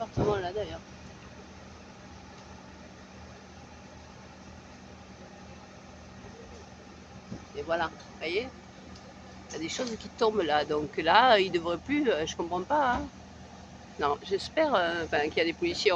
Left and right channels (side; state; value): both; identical; correlation 1.00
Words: d'ailleurs. Et voilà, vous voyez, il y a des choses qui tombent là. Donc là, il ne devrait plus, je comprends pas. Hein. Non, j'espère qu'il y a des policiers